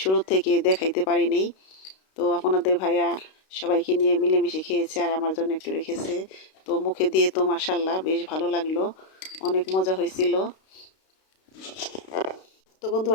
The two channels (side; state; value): right; late; 32 ms